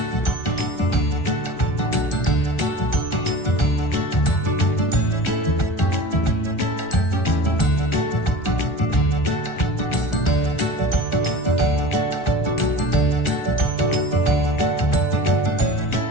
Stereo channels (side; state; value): right; late; 1.4 ms